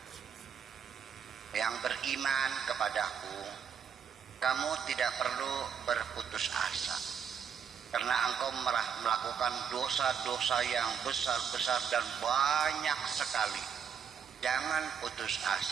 yang beriman kepadaku, kamu tidak perlu berputus asa, karena engkau melakukan dosa-dosa yang besar-besar dan banyak sekali. Jangan putus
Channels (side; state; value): left; quieter; 7.5 dB